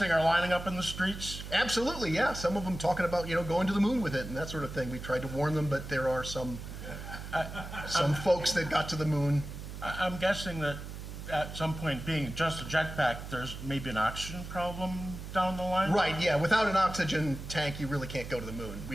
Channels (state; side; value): noise; right; hum, 10 dB below the sound